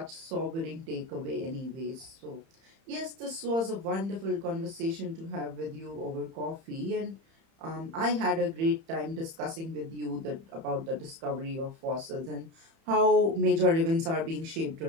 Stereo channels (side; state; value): left; late; 30 ms